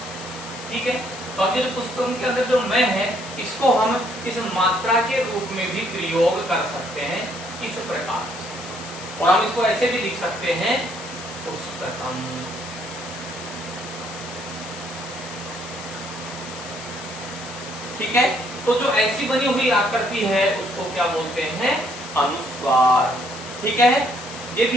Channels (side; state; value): left; noise; hiss, 13 dB below the sound